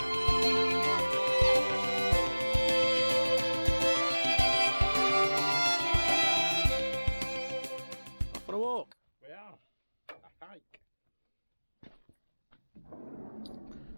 Off on a walk. We are. A hike.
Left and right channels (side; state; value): both; inverted; correlation -1.00